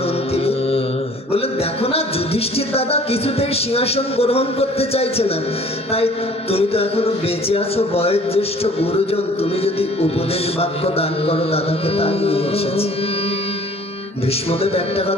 অন্তিমে? বললেন, দেখো না, যুধিষ্ঠির দাদা কিছুতেই সিংহাসন গ্রহণ করতে চাইছে না, তাই তুমি তো এখনো বেঁচে আছো, বয়োজ্যেষ্ঠ গুরুজন, তুমি যদি উপদেশ বাক্য দান করো দাদাকে, তাই নিয়ে এসেছি। ভীষ্মদেব একটা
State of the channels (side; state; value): both; normal; correlation 0.52